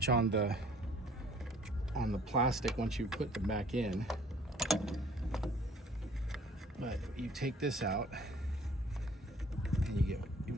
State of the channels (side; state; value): both; normal; correlation 0.55